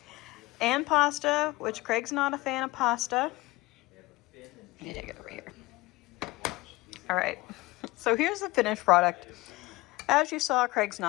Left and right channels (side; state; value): right; quieter; 21.2 dB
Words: and pasta, which Craig's not a fan of pasta. Let me take it over here. All right, so here's the finished product. As you saw, Craig's